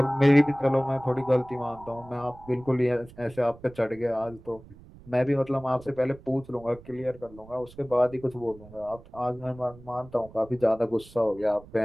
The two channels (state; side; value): noise; right; rumble, 21 dB below the sound